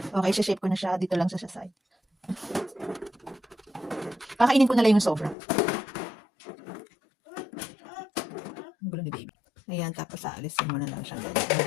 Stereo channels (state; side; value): drops out; right; at 5.4 s